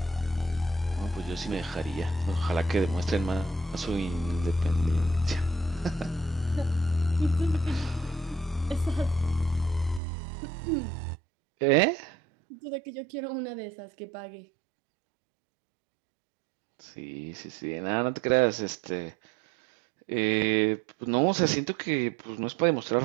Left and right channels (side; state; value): left; drops out; at 10.0 s